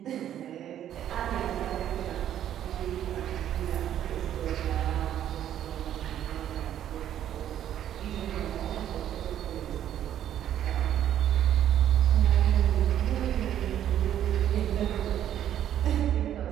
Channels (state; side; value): quieter; left; 10.9 dB